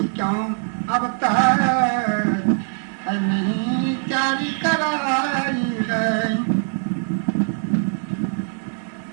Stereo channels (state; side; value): silent; left; 57 dB below the other